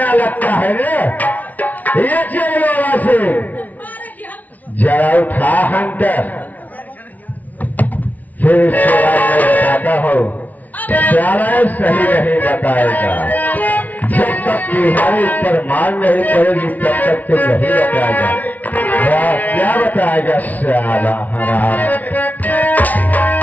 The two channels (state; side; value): late; right; 0.075 ms